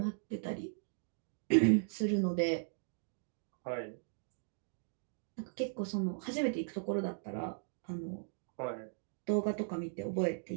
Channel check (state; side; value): silent; left; digital silence